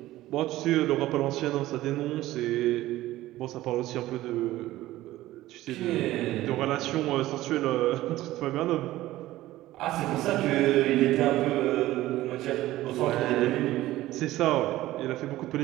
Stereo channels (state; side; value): quieter; left; 16.0 dB